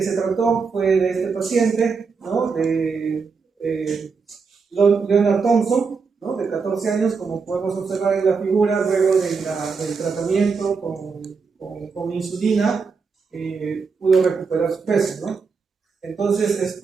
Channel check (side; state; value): left; quieter; 5.1 dB